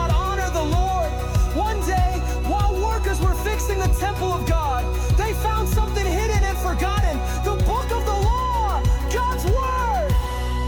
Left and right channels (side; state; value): both; identical; correlation 1.00